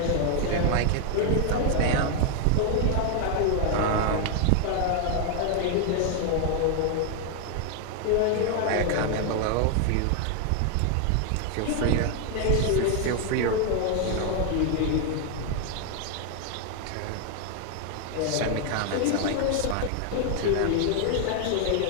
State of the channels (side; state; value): both; different; correlation 0.00